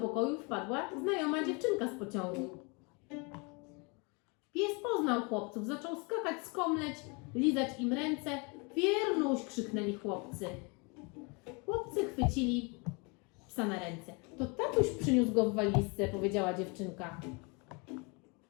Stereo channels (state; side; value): quieter; right; 30.9 dB